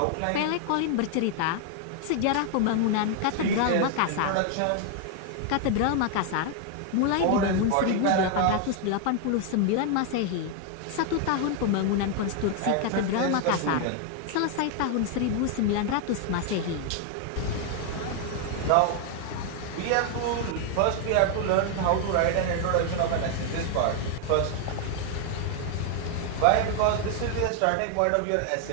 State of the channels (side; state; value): both; different; correlation 0.00